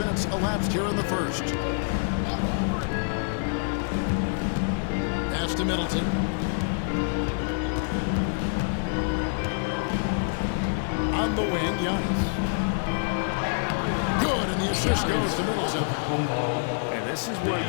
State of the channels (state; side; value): silent; right; digital silence